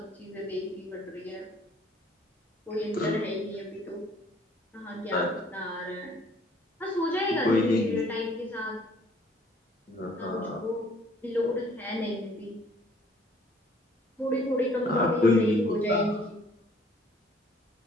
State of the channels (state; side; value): normal; both; correlation 0.58